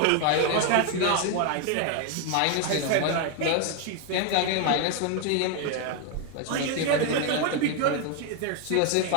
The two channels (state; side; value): different; both; correlation 0.01